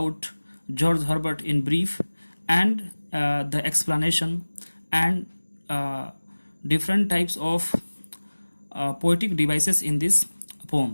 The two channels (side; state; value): both; inverted; correlation -1.00